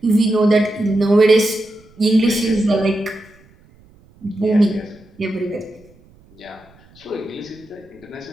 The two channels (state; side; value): noise; right; rumble, 28 dB below the sound